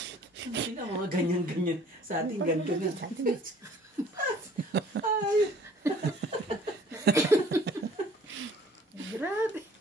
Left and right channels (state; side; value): normal; both; correlation 0.54